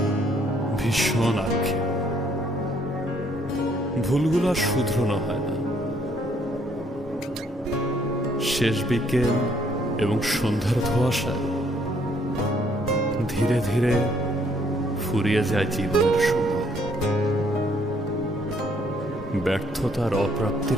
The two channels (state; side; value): normal; both; correlation 0.67